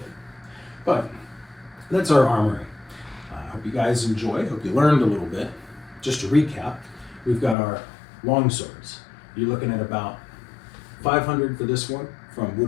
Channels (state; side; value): drops out; right; at 7.6 s